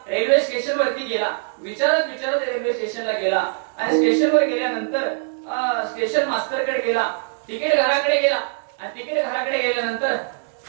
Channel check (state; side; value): silent; left; 64 dB below the other